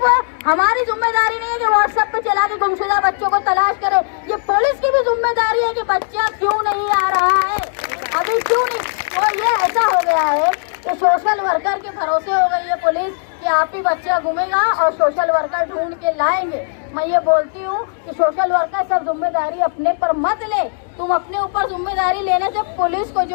हमारी जिम्मेदारी नहीं है कि व्हाट्सएप पे चला के गुमशुदा बच्चों को तलाश करे, ये पुलिस की भी जिम्मेदारी है कि बच्चा क्यों नहीं आ रहा है, अभी क्यों नहीं। तो ये ऐसा हो गया है कि सोशल वर्कर के भरोसे हो गई है पुलिस कि आप ही बच्चा घूमेगा और सोशल वर्कर ढूंढ के लाएंगे। मैं ये बोलती हूँ कि सोशल वर्कर सब जिम्मेदारी अपने पर मत ले, तुम अपने ऊपर जिम्मेदारी लेने से पुलिस को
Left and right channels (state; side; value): silent; right; digital silence